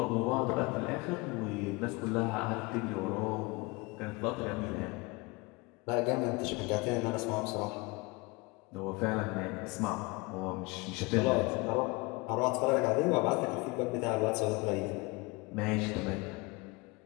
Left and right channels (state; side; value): quieter; right; 25.1 dB